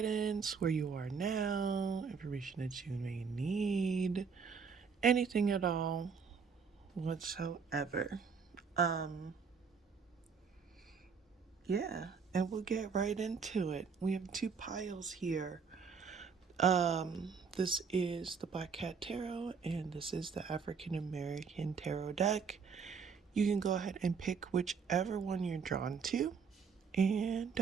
where you are now, information that you may need, anything at all, whatsoever. Um, yeah, and we'll get right into it. We have two piles here. This is the Black Cat Tarot, and this is the African American Tarot deck. You can go ahead and pick whichever one you're drawn to, and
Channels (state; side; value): quieter; left; 5.9 dB